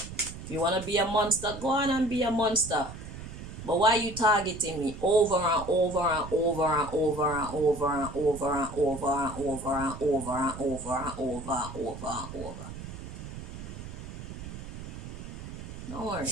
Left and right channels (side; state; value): right; noise; rumble, 11 dB below the sound